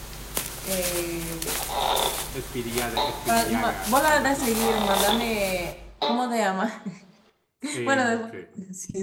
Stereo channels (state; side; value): identical; both; correlation 1.00